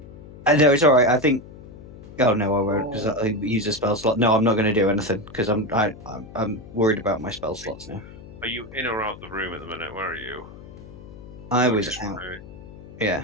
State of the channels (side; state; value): left; noise; hum, 17 dB below the sound